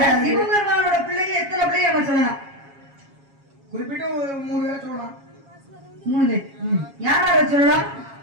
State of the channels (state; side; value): late; left; 7.2 ms